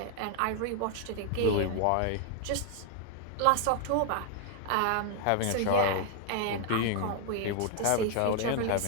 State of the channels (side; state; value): both; different; correlation 0.00